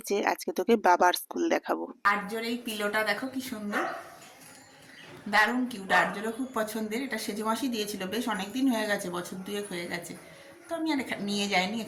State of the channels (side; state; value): both; identical; correlation 1.00